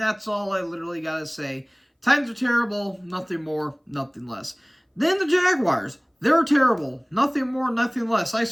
that's all I literally got to say. Titans are terrible, nothing more, nothing less. Then the Jaguars, they're terrible, nothing more, nothing less. I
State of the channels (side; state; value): both; identical; correlation 1.00